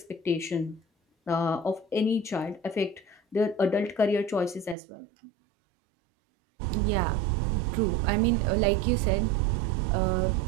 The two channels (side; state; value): left; drops out; at 4.8 s